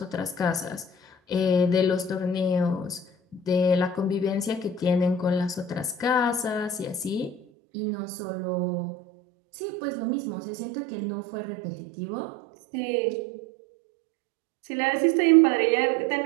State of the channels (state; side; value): drops out; left; at 7.4 s